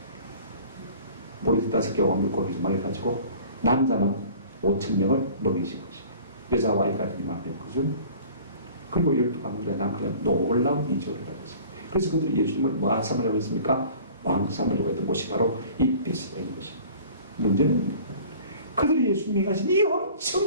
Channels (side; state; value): both; inverted; correlation -0.46